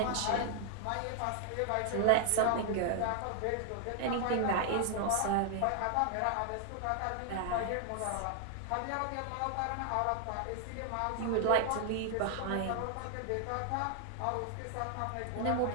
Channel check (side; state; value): both; different; correlation 0.00